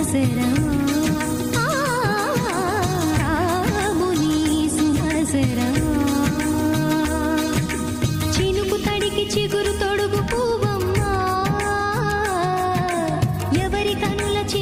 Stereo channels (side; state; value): both; identical; correlation 1.00